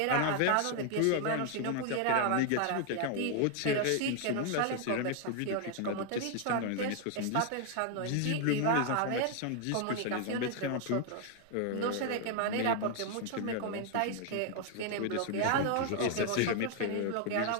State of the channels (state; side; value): different; both; correlation 0.00